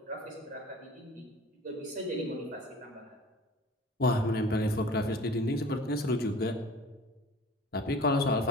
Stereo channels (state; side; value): normal; both; correlation 0.44